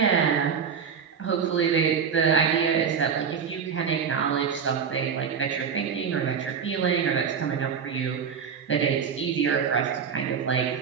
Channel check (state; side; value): quieter; left; 6.8 dB